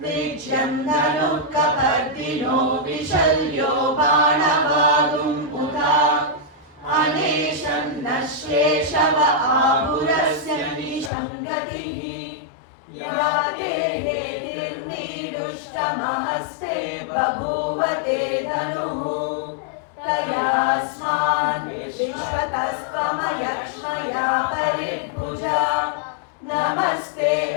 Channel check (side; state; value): right; drops out; at 11.1 s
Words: विज्यं धनुः कपर्दिनो विशल्यो बाणवागुं पुता अनेशं नश्येशव आहुरस्य निशङ्गतिः या देहेर्निदुष्टमहस्ते बभूव ते धनुः तयास्मान् विश्वतस्त्वमयक्ष्मया परिभुजा नमस्ते